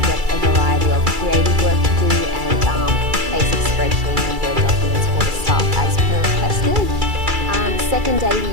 get a variety of creative work to do and basic spreadsheet and Word documents for the staff as per requested. Second day,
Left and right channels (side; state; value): left; late; 2.3 ms